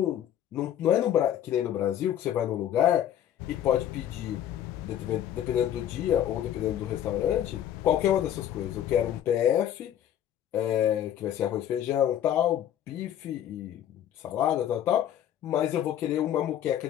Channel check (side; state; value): right; quieter; 10.8 dB